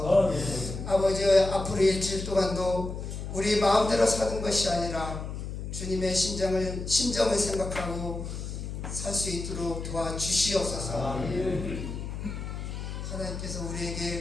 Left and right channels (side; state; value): left; noise; hum, 6 dB below the sound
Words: 아버지 앞으로 일주일 동안도 우리 마음대로 사는 것이 아니라 주님의 심정을 생각하고 살 수 있도록 도와주시옵소서. 하나님께서